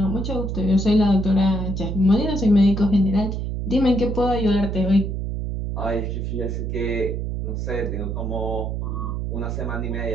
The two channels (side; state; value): right; noise; hum, 3 dB below the sound